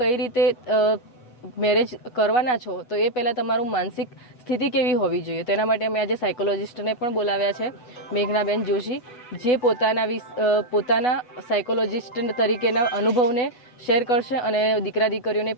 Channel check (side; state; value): right; late; 8.1 ms